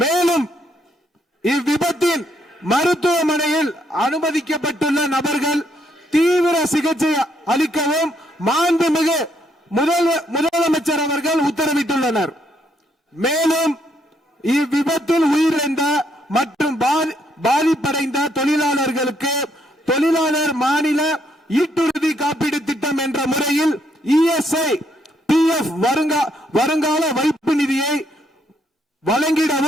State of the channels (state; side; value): normal; both; correlation 0.73